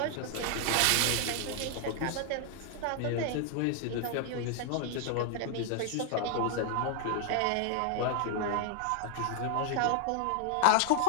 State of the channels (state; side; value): different; both; correlation 0.00